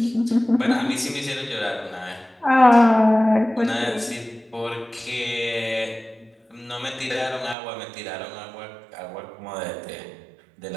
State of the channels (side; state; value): left; drops out; at 7.6 s